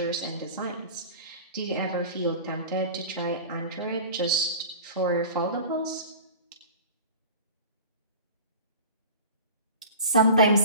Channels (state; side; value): inverted; both; correlation -0.37